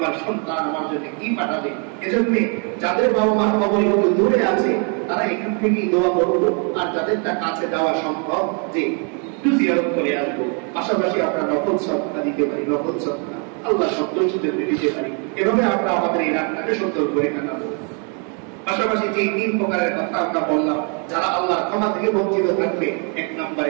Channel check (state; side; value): quieter; left; 37.9 dB